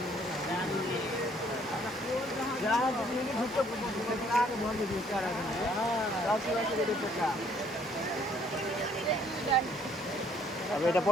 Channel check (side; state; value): both; normal; correlation 0.63